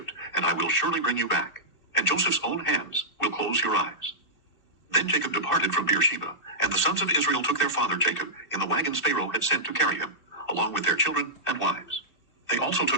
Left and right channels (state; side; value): late; right; 2.7 ms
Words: and I will surely bring you back, and Joseph's own hands will close your eyes. Then Jacob departed from Beersheba, and the sons of Israel took their father Jacob in the wagons Pharaoh had sent to carry him, along with their children and wives. They also